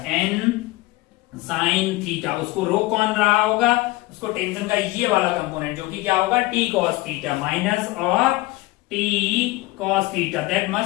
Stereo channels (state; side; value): quieter; right; 20.0 dB